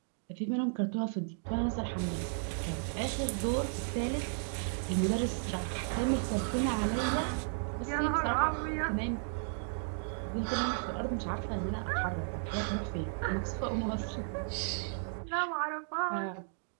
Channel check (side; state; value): left; silent; digital silence